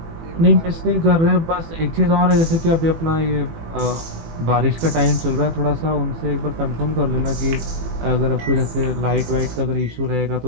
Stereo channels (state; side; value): late; left; 18 ms